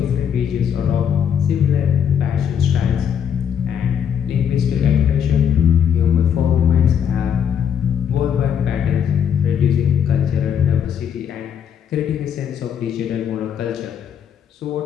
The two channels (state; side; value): quieter; right; 8.3 dB